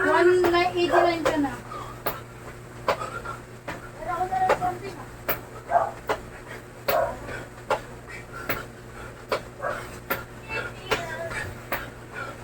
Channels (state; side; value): identical; both; correlation 1.00